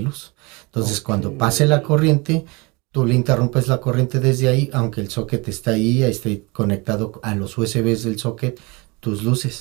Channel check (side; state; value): left; quieter; 26.8 dB